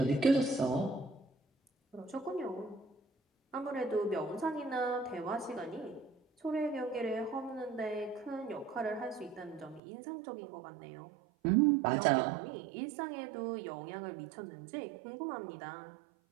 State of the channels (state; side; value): drops out; left; at 9.8 s